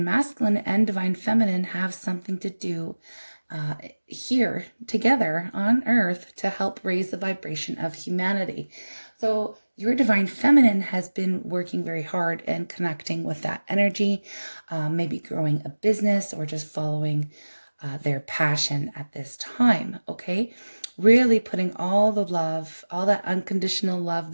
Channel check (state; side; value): inverted; both; correlation -1.00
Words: Masculine and Divine Feminine have something to do here together on Earth to help raise the vibration of humanity. So your Divine Feminine has been working very hard and connecting with that energy, maybe growing a business or just following their passion at this time, okay? Really putting all the love, all that unconditional love